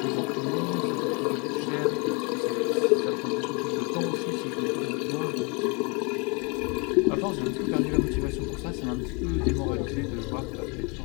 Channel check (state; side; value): quieter; right; 31.1 dB